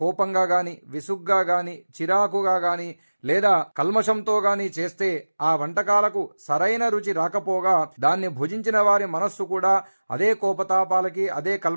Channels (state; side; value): inverted; both; correlation -1.00